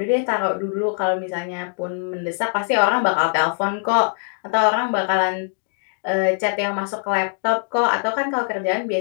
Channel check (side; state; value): right; silent; digital silence